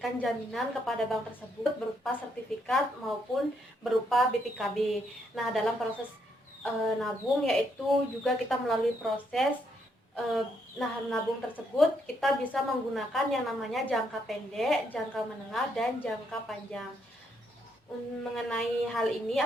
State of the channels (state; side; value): normal; both; correlation 0.75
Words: jaminan kepada bank tersebut berupa sertifikat maupun berupa BPKB. Nah, dalam proses nabung yaitu juga kita melalui proses nabung tersebut kita bisa menggunakan yang namanya jangka pendek, jangka menengah, dan jangka panjang. Mengenai hal ini